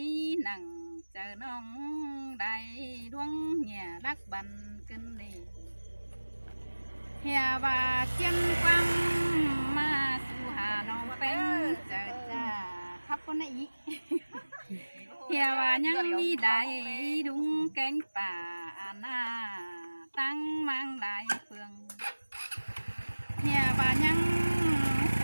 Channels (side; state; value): both; inverted; correlation -1.00